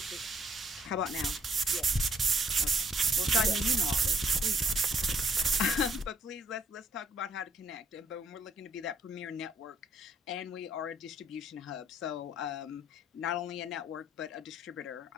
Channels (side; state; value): both; normal; correlation 0.67